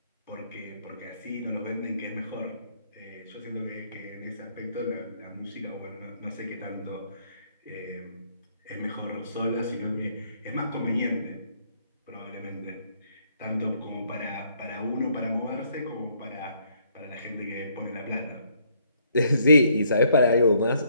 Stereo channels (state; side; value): inverted; both; correlation -0.68